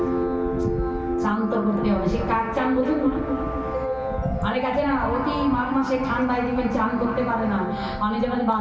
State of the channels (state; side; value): identical; both; correlation 1.00